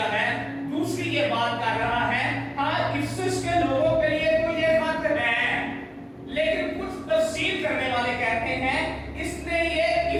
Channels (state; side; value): identical; both; correlation 1.00